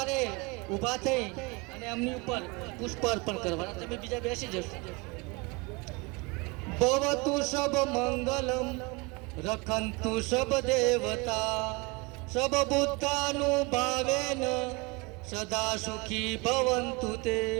ઊભા થઈ અને એમની ઉપર પુષ્પ અર્પણ કરવાના. તમે બીજા બેસી જશો. ભવતુ સબ મંગલમ રખંતુ સબ દેવતા સબ બુદ્ધાનુભાવેન સદા સુખી ભવંતુ તે.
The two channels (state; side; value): quieter; left; 26.6 dB